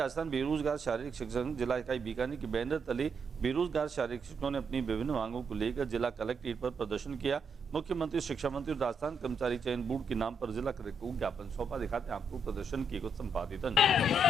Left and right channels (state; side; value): normal; both; correlation 0.78